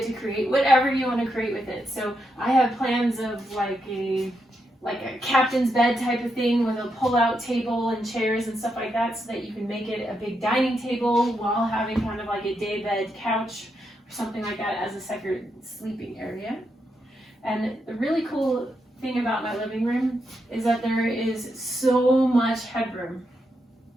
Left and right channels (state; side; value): normal; both; correlation 0.82